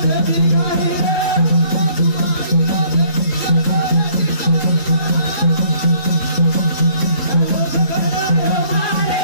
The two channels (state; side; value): late; right; 3.7 ms